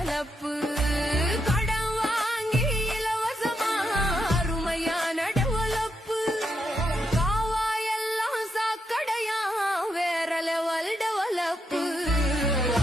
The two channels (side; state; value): both; normal; correlation 0.81